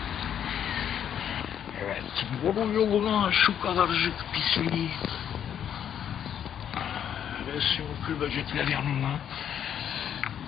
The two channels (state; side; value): quieter; right; 9.2 dB